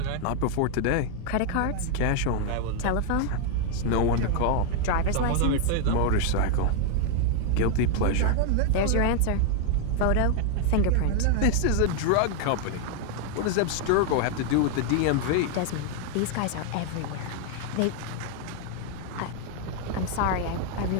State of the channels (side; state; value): both; different; correlation 0.00